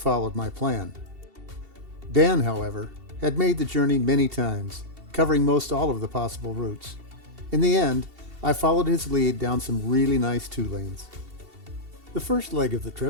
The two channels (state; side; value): late; left; 2.7 ms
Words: my plan. Dan, however, had made the journey many times, covering most all of the possible routes. In the end, I followed his lead down some really nice 2-lanes. The first leg of the